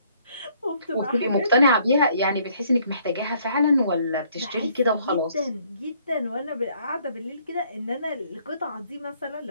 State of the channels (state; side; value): inverted; both; correlation -0.64